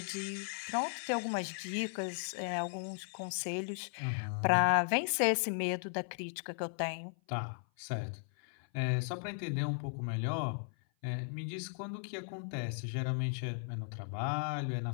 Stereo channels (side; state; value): right; silent; 53 dB below the other